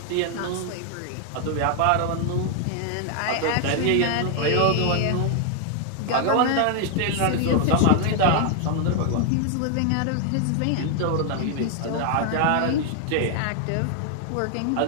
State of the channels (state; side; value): different; both; correlation 0.00